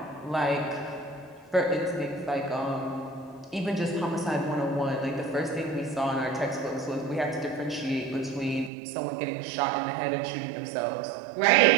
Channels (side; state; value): left; drops out; at 8.7 s